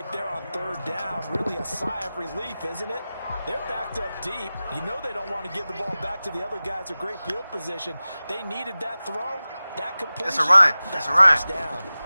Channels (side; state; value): both; inverted; correlation -0.97